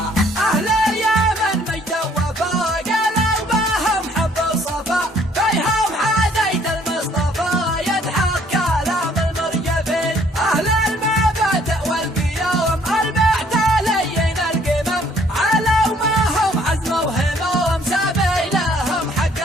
اهل اليمن مجد وفا قالوا بهم حب الصفا فيهم حديث المصطفى يضحك كلام المرجفين. اهل المبادئ والقيام المحتالين القمم علوا ما هم عزم وهموم سبيلهم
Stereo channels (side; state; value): both; normal; correlation 0.62